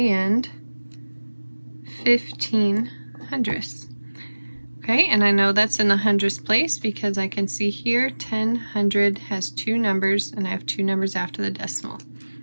15 hundredths. Okay, and I know that's in the hundredths place because I can see here 10 hundred has 2 numbers and I have 2 numbers after the decimal.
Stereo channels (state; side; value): inverted; both; correlation -1.00